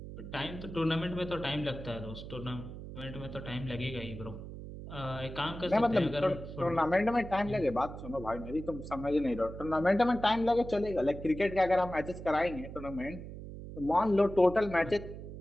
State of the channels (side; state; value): right; noise; hum, 11 dB below the sound